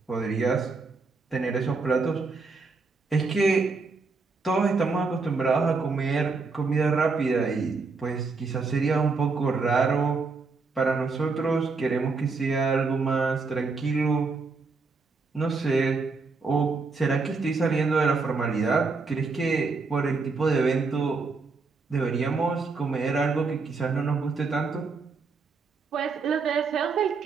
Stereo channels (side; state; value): left; quieter; 4.3 dB